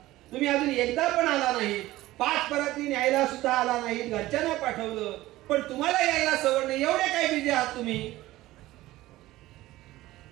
तुम्ही अजून एकदा पण आला नाही, 5 पराती न्यायला सुद्धा आला नाही, घरच्यांना पाठवलं, पण तुम्हाला यायला सवड नाही, एवढे काय बिझी आहात तुम्ही?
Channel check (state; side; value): quieter; left; 16.9 dB